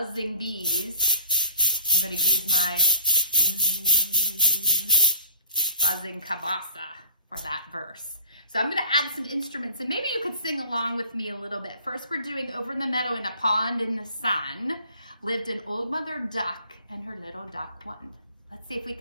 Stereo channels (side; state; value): both; inverted; correlation -0.46